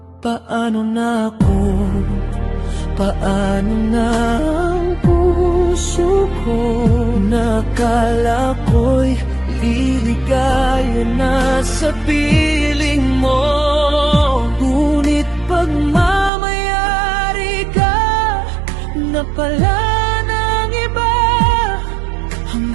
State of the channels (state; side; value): drops out; left; at 16.3 s